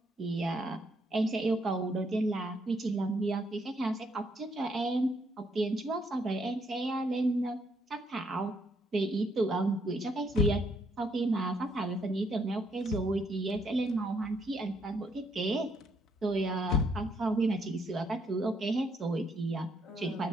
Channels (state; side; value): normal; both; correlation 0.72